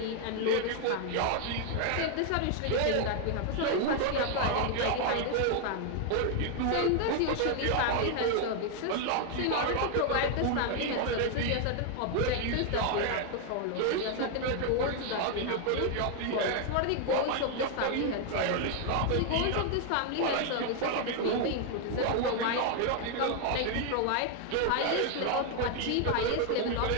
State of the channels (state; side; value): different; both; correlation 0.00